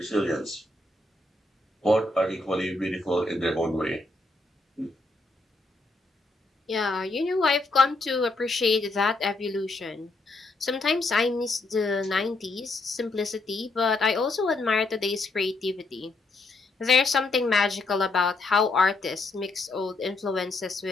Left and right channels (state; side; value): quieter; right; 3.2 dB